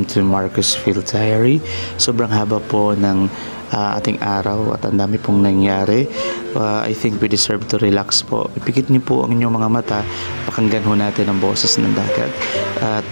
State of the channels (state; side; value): inverted; both; correlation -1.00